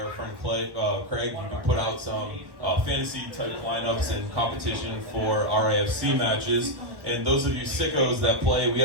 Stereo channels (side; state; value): left; late; 1.1 ms